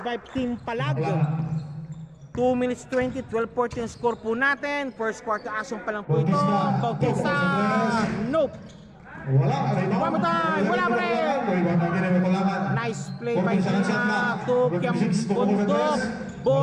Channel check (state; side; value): identical; both; correlation 1.00